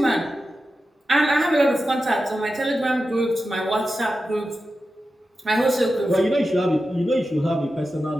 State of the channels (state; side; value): normal; both; correlation 0.91